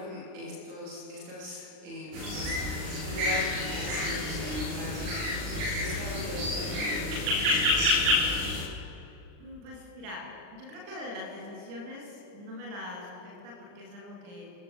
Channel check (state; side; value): late; left; 39 ms